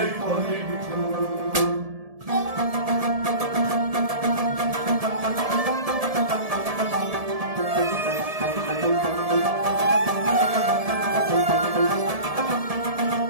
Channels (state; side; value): late; left; 1.7 ms